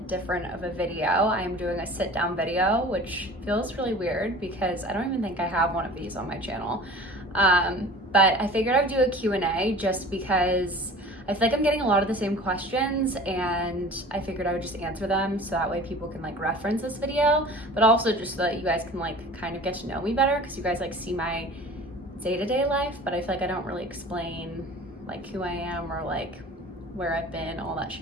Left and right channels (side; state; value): both; normal; correlation 0.42